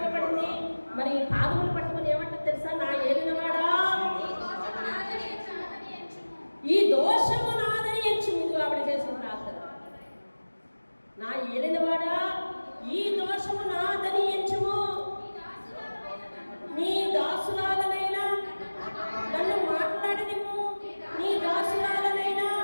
పడింది. మరి పాదములు పట్టుకుని ఏమంటే తెలుసా? నా ఏలినవాడా ఈ దోషము నాదని ఎంచు. ముందు ఆవిడ చేసిన ప్రార్థన, నా ఏలినవాడా ఈ దోషము నాదని ఎంచుము, నీ దాసులాగనైనా నన్ను మాట్లాడనివ్వు, నీ దాసులాగనైనా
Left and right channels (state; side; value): inverted; both; correlation -1.00